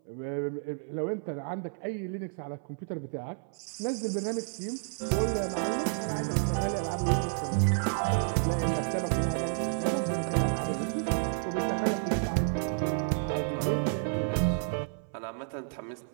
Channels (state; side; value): silent; left; 57 dB below the other